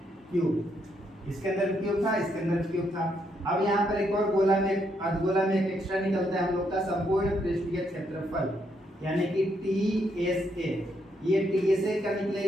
क्यूब। इसके अंदर क्यूब था, इसके अंदर क्यूब था। अब यहाँ पर एक और गोला में, अर्धगोला में एक एक्स्ट्रा निकलता है हम लोग का संपूर्ण पृष्ठीय क्षेत्रफल यानी कि TSA। ये TSA का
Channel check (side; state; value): both; normal; correlation 0.76